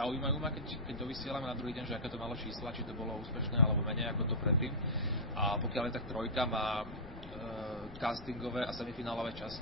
ma, keď dovysielame na druhý deň, že aké to malo čísla, či to bolo úspešné alebo menej ako to predtým. A pokiaľ je tak trojka má castingové a semifinálové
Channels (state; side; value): noise; left; rumble, 15 dB below the sound